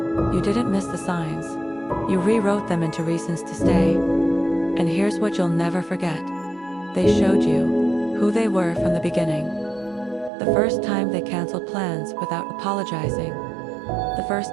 You didn't miss the signs. You rewrote them into reasons to stay. And here's what you'll never forget. They showed you who they were from the beginning. The first time they canceled plans without apologizing. The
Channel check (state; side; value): drops out; left; at 10.3 s